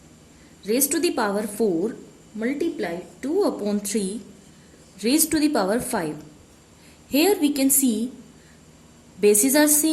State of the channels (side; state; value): both; identical; correlation 1.00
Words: raised to the power 4 multiply 2 upon 3 raised to the power 5. Here we can see bases are